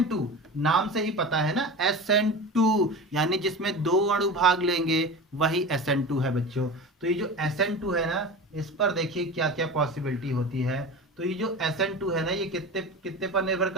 नाम से ही पता है ना SN2 यानी जिसमें दो अणु भाग लेंगे वही SN2 है बच्चों। तो ये जो SN2 है ना, इस पर देखिए क्या क्या पॉसिबिलिटी होती है। तो ये जो SN2 है ना, ये कितने कितने पर निर्भर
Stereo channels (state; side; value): normal; both; correlation 0.31